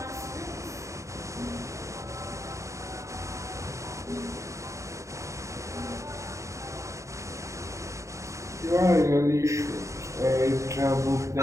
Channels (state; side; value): late; left; 0.15 ms